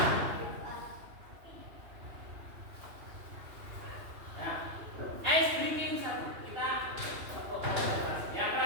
Nah, ice breaking satu. Kita tepuk konsentrasi. Yang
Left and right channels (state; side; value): late; left; 2.9 ms